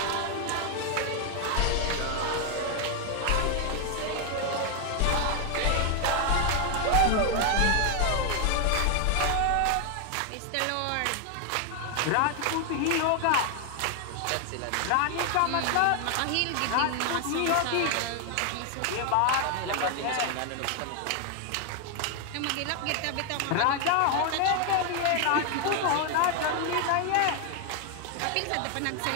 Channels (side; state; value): both; different; correlation 0.00